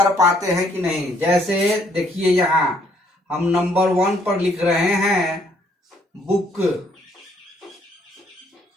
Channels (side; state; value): both; normal; correlation 0.67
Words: पाते हैं कि नहीं। जैसे देखिए, यहाँ हम नंबर 1 पर लिख रहे हैं बुक,